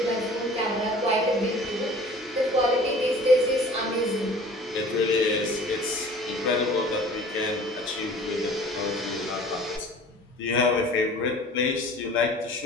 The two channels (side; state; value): both; normal; correlation 0.46